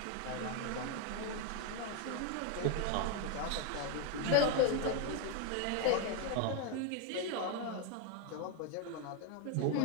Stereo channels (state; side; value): different; both; correlation 0.01